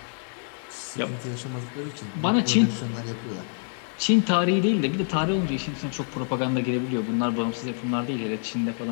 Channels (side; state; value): right; silent; 58 dB below the other